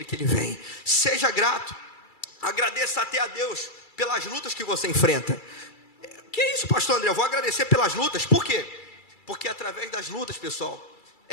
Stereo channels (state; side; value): late; right; 2.3 ms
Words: que Ele vem. Seja grato. Agradeça até a Deus pelas lutas que você enfrenta. Que é isso, pastor André? Eu vou agradecer pelas lutas. Por quê? Porque através das lutas, pessoal,